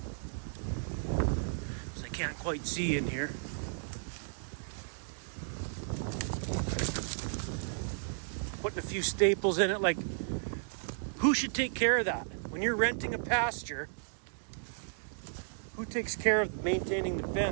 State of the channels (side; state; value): left; silent; digital silence